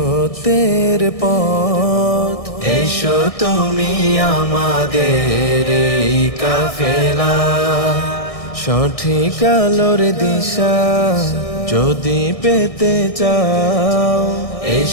পথ, এসো তুমি আমাদের এই কাফেলা। সঠিক আলোর দিশা যদি পেতে চাও,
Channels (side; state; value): right; late; 1.6 ms